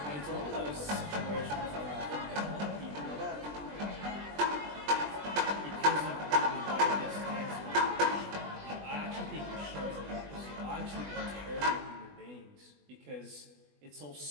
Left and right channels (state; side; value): late; left; 20 ms